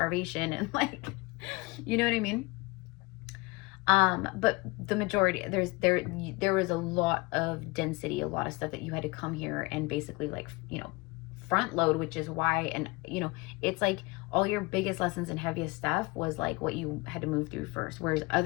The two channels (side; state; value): right; quieter; 25.3 dB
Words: and, like, you know what I mean? But the majority, there was a lot of density, a lot of stuff that you had to come here and basically, like, you know, front load, which is why, and, you know, it's like all your biggest lessons and heaviest stuff was like what you had to move through first. Whereas